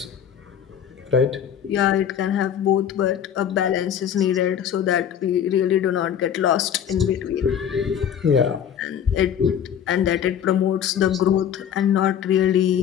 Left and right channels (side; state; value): right; quieter; 8.9 dB